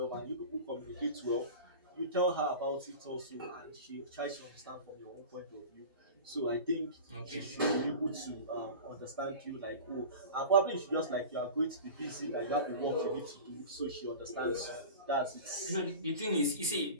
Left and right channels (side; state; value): both; inverted; correlation -0.34